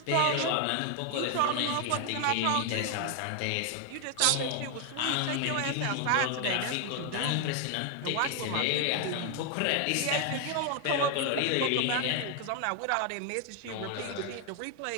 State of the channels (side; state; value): both; different; correlation 0.00